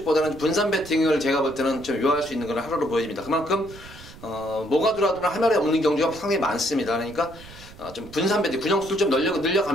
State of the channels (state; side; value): noise; right; rumble, 18 dB below the sound